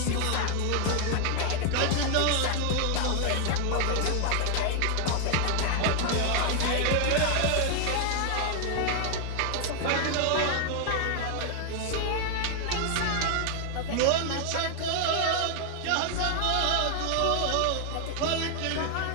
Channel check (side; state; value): both; different; correlation 0.00